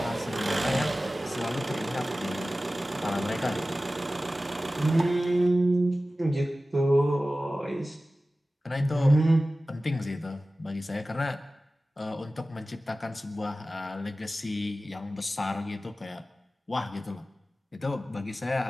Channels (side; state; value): both; normal; correlation 0.96